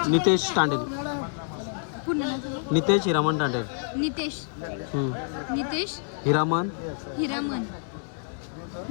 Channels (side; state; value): right; silent; 60 dB below the other